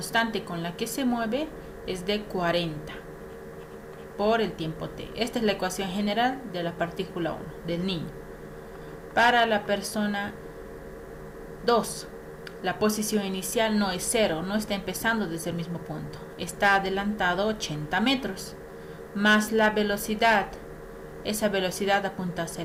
con la que se mueve es de 40 por el tiempo t. Esta es la ecuación general de la partícula 1, del niño. Para la persona 2, la posición inicial no es 0, no está empezando desde el mismo punto. Está adelantado 80 metros, más la velocidad. Esa velocidad apunta hacia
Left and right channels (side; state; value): both; identical; correlation 1.00